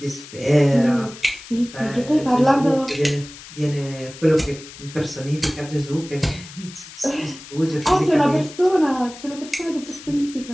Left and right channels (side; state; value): left; noise; hiss, 16 dB below the sound